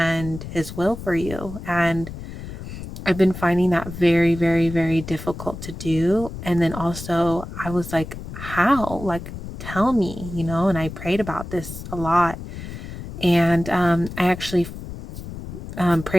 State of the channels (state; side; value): noise; left; rumble, 11 dB below the sound